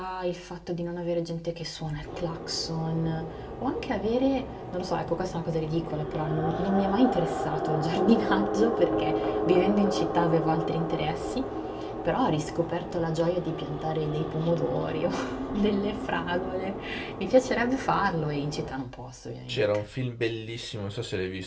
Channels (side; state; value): both; identical; correlation 1.00